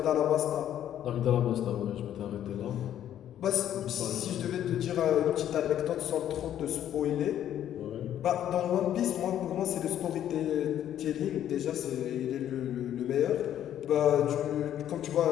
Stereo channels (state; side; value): quieter; right; 10.9 dB